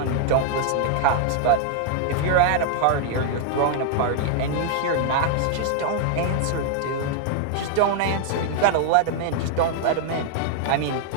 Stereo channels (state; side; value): different; both; correlation 0.00